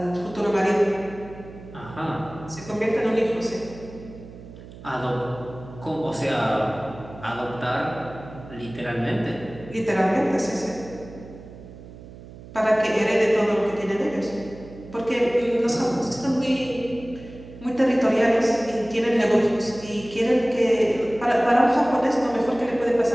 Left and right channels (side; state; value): right; noise; hum, 17 dB below the sound